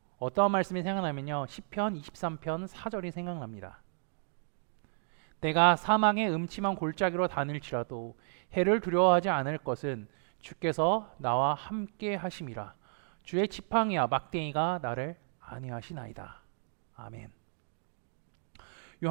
어떠한 말씀이 생각나면요, 시편 23편 4절이 생각납니다. 내가 사망의 음침한 골짜기로 다닐지라도 해를 두려워하지 않을 것은 주께서 나와 함께 하심이라. 주의 지팡이와 막대기가 나를 안위하시나이다. 아멘.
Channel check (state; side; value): silent; left; digital silence